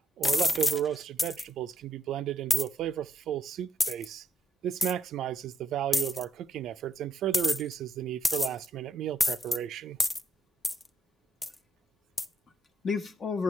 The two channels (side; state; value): both; normal; correlation 0.76